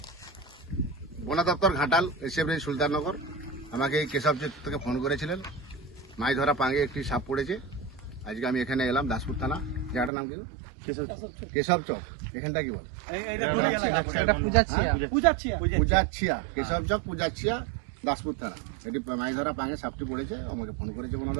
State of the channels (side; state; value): left; drops out; at 10.1 s